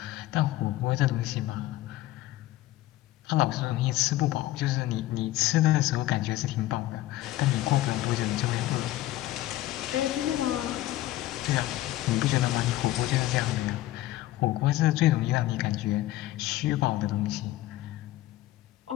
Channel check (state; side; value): quieter; right; 15.8 dB